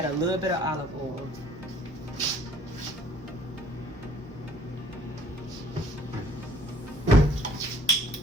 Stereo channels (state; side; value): normal; both; correlation 0.58